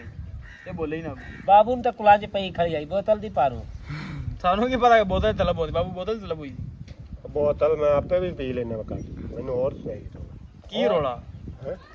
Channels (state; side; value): identical; both; correlation 1.00